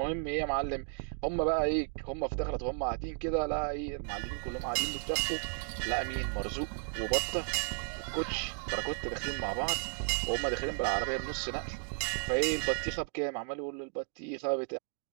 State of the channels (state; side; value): silent; left; 55 dB below the other